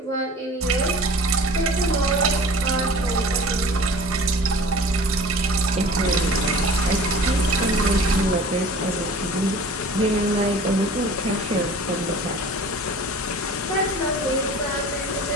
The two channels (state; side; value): normal; both; correlation 0.43